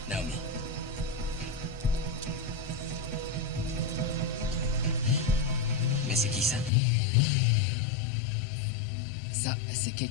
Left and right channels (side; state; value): right; drops out; at 6.7 s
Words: Naomi. Mais c'est qui ça? Ça, c'est